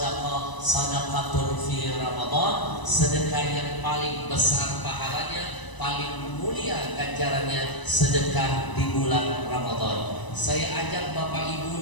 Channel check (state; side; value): late; right; 1.0 ms